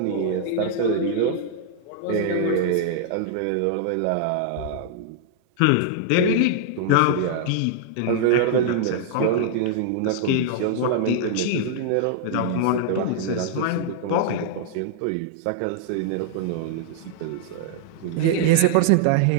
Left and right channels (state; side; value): different; both; correlation -0.01